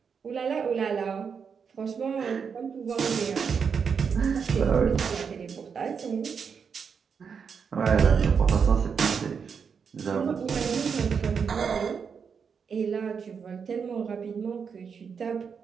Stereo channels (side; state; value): left; quieter; 6.3 dB